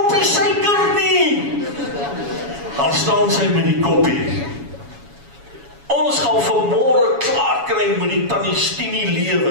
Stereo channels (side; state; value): left; late; 7.1 ms